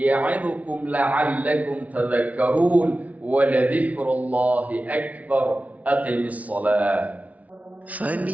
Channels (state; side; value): late; left; 0.069 ms